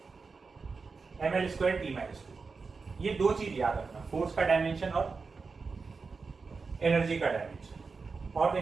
ml स्क्वायर t माइनस 2। ये दो चीज याद रखना, फोर्स का डायमेंशन और एनर्जी का डायमेंशन। और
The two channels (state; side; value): quieter; left; 4.6 dB